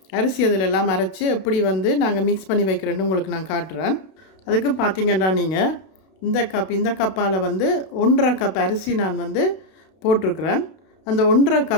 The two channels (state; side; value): late; right; 32 ms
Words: அரிசி அதில் எல்லாம் அரைச்சி எப்படி வந்து நாங்கள் மிக்ஸ் பண்ணி வைக்கிறேன்னு உங்களுக்கு நான் காட்டுறேன். அதுக்கு பார்த்தீங்கன்னா நீங்கள் இந்த கப்பால் வந்து 1.5 கப் அரிசி நான் வந்து போட்டிருக்கிறேன். அந்த 1.5